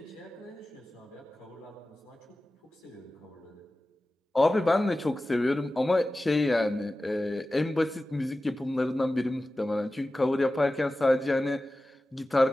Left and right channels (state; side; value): normal; both; correlation 0.95